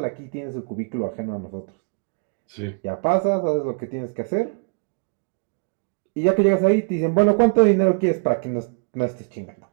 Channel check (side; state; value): left; quieter; 36.4 dB